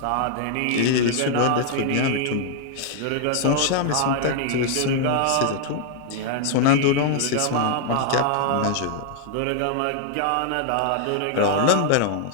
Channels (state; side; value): different; both; correlation 0.00